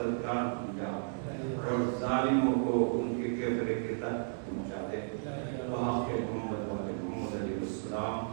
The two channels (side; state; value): left; silent; digital silence